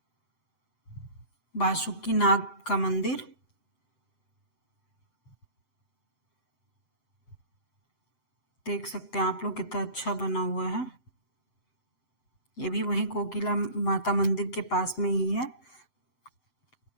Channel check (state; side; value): late; right; 7.8 ms